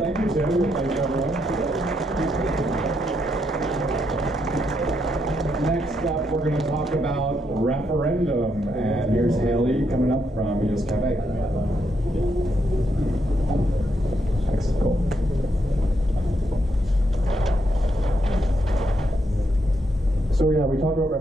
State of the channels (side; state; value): both; normal; correlation 0.78